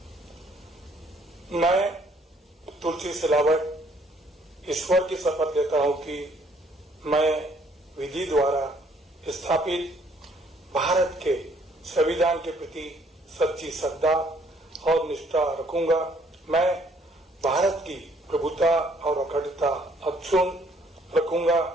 मैं तुलसी सिलावट ईश्वर की शपथ लेता हूं कि मैं विधि द्वारा स्थापित भारत के संविधान के प्रति सच्ची श्रद्धा और निष्ठा रखूंगा। मैं भारत की प्रभुता और अखंडता अक्षुण्ण रखूंगा।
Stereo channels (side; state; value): both; normal; correlation 0.64